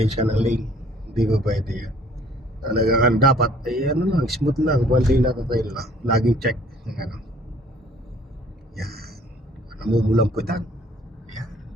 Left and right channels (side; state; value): both; normal; correlation 0.56